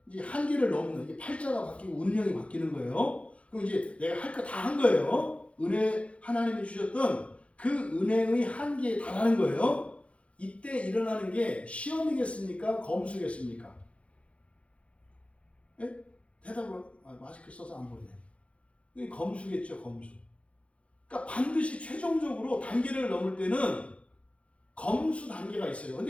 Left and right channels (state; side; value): late; right; 0.062 ms